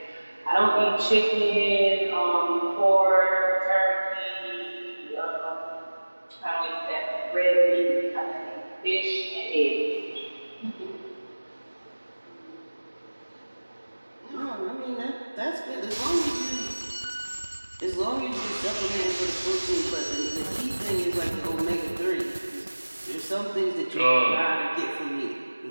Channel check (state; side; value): inverted; both; correlation -1.00